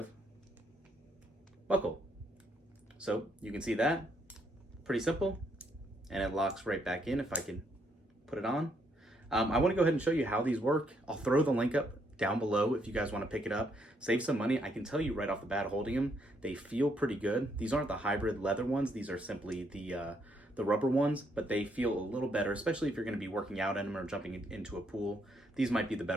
buckle. So you can see that, pretty simple, and it locks right back in if I can put it on. I want to go ahead and show you how these work. I'll throw the link up down below if you guys want to pick it up. Save some money. I can tell you right off the bat, holding them, they feel pretty good. These aren't the hybrid leather ones. These are simply the rubber ones, but they feel a little better, especially if you're going to be working out in them or jumping into a pool. These might be the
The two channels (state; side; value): normal; both; correlation 0.73